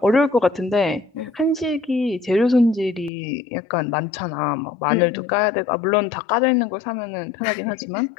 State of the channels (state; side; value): drops out; right; at 3.1 s